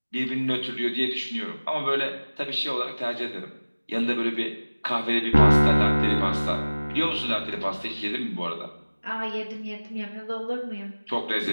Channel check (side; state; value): both; inverted; correlation -1.00